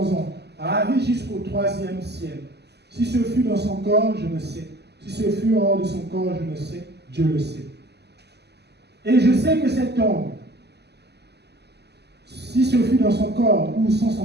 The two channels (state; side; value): late; left; 0.49 ms